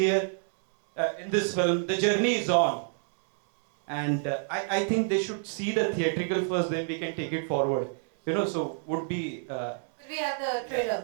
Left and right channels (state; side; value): silent; left; digital silence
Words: in this film, the journey is on. And I think they should see the theatrical first, then we can take it forward. So would be... Could we have the